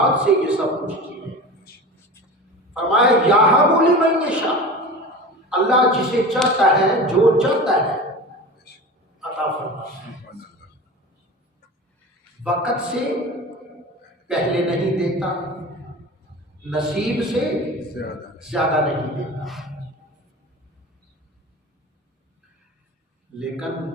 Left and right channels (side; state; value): both; normal; correlation 0.33